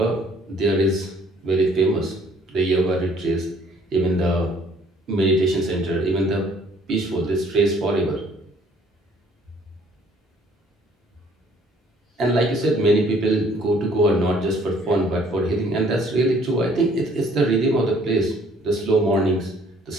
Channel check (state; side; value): normal; both; correlation 0.60